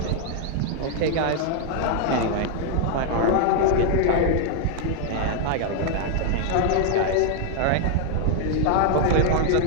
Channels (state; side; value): different; both; correlation 0.00